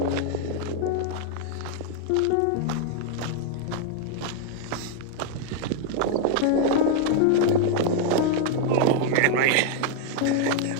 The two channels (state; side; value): different; both; correlation 0.00